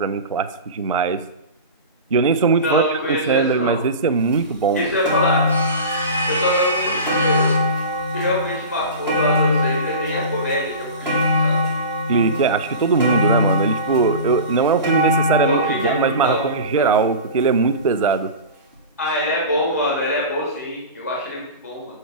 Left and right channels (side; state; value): both; inverted; correlation -0.32